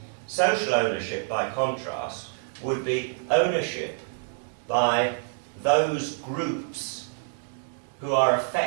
social ownership, by contrast, would be ownership by those groups who are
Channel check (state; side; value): silent; left; 60 dB below the other